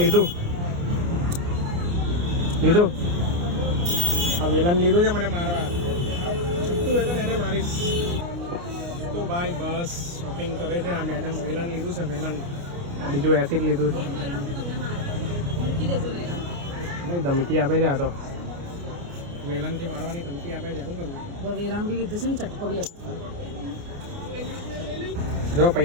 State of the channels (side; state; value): left; late; 29 ms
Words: આ વેલન લીધું છે મને મારવા. છૂટું વેલન એને મારીશ તો ભાઈ. બસ શોપિંગ કરે છે આ મેડમ. વેલન લીધું છે, વેલન. બીજું એસિડ લીધું છે ભાઈ. ધમકી આપે છે આ તો, વેલનથી મારવાની ધમકી આપે છે. શું કરવું? વેલાણ બી કીધું છે ને, ચટકો બી આપતો. જો